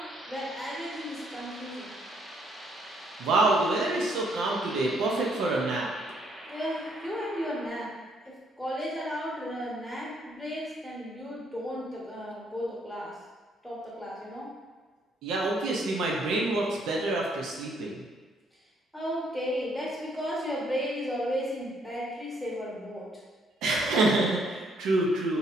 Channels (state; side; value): normal; both; correlation 0.69